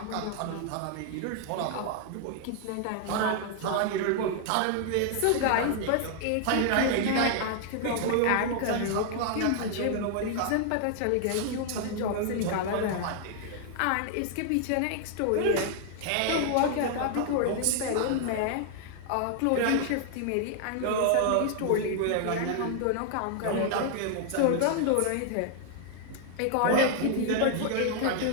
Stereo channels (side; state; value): both; different; correlation 0.00